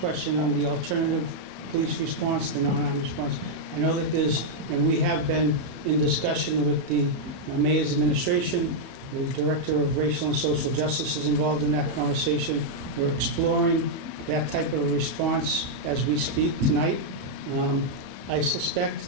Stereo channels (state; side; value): normal; both; correlation -0.03